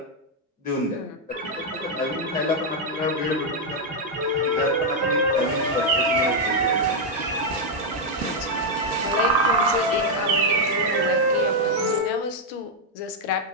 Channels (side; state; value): both; normal; correlation -0.01